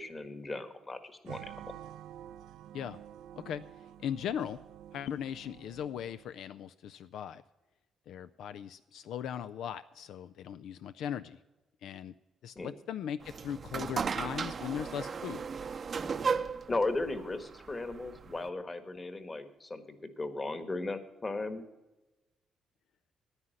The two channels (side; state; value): both; normal; correlation 0.77